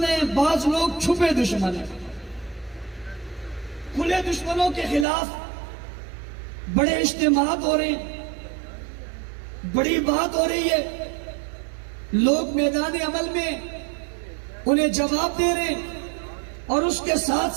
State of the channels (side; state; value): left; drops out; at 5.1 s